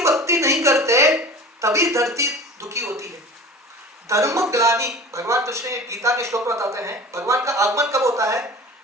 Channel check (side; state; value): both; normal; correlation 0.38